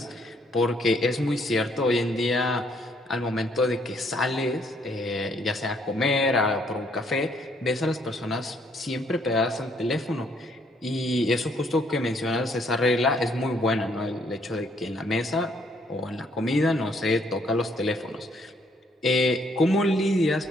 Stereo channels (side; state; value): both; normal; correlation 0.67